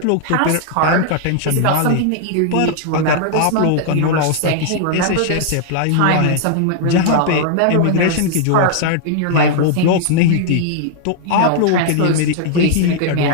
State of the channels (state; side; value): different; both; correlation -0.01